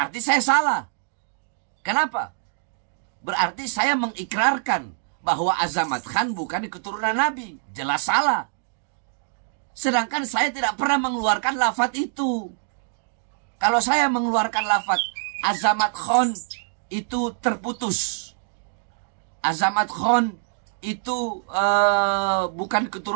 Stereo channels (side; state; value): left; silent; digital silence